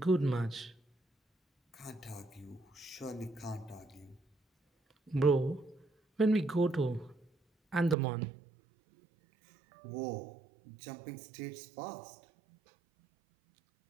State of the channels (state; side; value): drops out; left; at 8.0 s